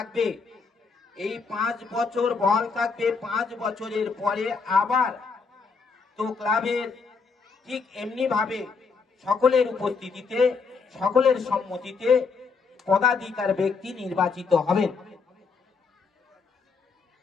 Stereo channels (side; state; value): right; quieter; 4.9 dB